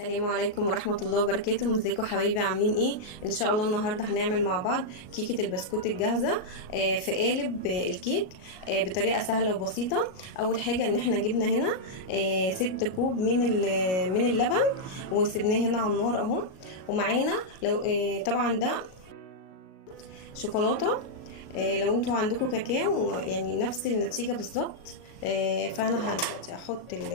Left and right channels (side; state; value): right; late; 38 ms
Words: عليكم ورحمه الله وبركاته. ازيكم حبايبي، عاملين ايه؟ ان شاء الله النهارده هنعمل مع بعض كيكه البسكوت الجاهزه في قالب الكيك بطريقه سهله وبسيطه. اول حاجه ان احنا جبنا هنا 6 كوب من اللبن وسبناه هنا على النار اهو. ومعانا لو طبعا ده شوكولاته لو انتوا عندكم كاكاو يعني نفس النتيجة بالظبط. فانا دلوقتي هحط